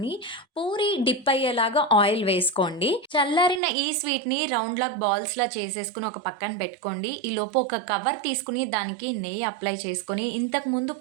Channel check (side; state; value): left; drops out; at 3.6 s